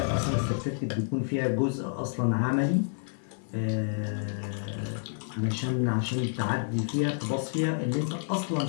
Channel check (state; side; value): silent; right; 56 dB below the other